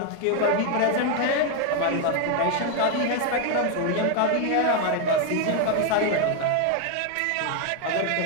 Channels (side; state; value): both; different; correlation 0.01